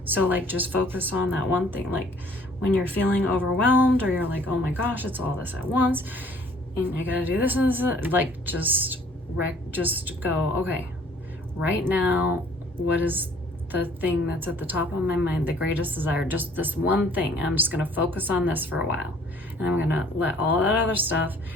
So like, just focus on that one thing. Like when you're feeling overwhelmed or you're like, oh my gosh, it's all this at once and I gotta do this and this, like just go, okay, right now, what is the thing that's at the top of my mind, the greatest desire, just this one thing. I'm just gonna focus on this for a while, and I'm gonna let all that other stuff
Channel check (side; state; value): both; normal; correlation 0.57